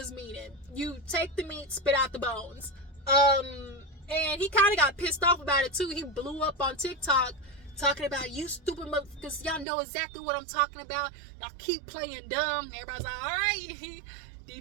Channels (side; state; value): left; drops out; at 9.7 s